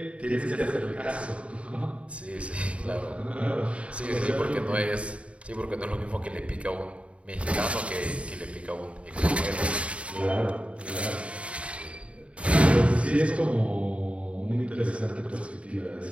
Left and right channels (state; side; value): late; left; 0.062 ms